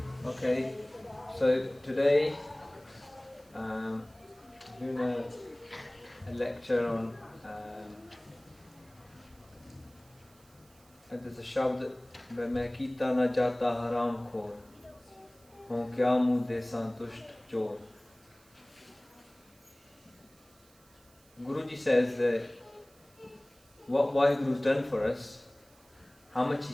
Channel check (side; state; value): right; noise; hiss, 28 dB below the sound